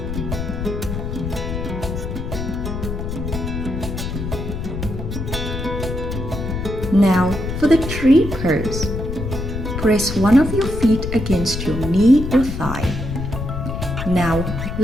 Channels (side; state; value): left; noise; rumble, 5 dB below the sound